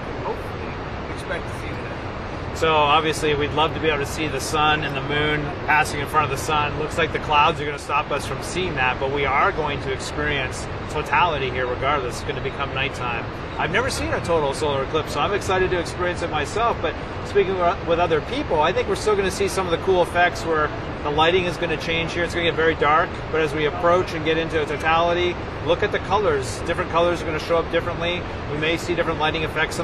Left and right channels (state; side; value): identical; both; correlation 1.00